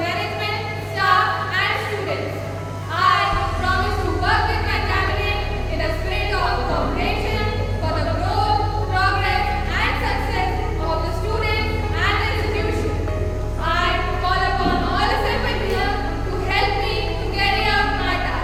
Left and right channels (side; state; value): both; identical; correlation 1.00